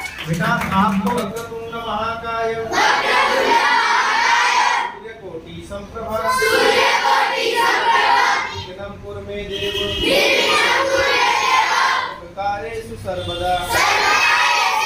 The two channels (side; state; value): both; identical; correlation 1.00